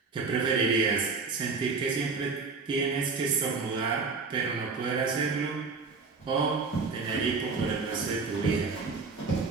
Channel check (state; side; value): quieter; left; 4.5 dB